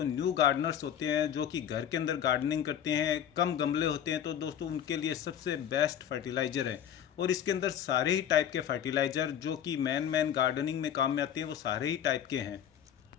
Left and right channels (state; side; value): quieter; right; 9.7 dB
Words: न्यू गार्डनर्स होते हैं, जो कि घर के अंदर गार्डनिंग करते हैं, कम गमले होते हैं, तो दोस्तों उनके लिए सबसे बेस्ट फर्टिलाइज़र है। और इसके अंदर सारे ही टाइप के फर्टिलाइज़र जो कि मैन गार्डनिंग में काम में आते हैं, वो सारे ही टाइप के हैं।